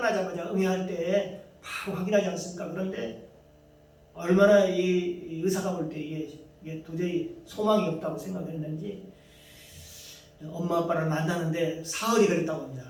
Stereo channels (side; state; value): both; identical; correlation 1.00